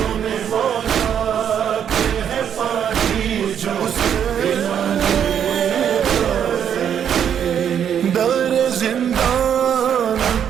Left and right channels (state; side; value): quieter; left; 8.8 dB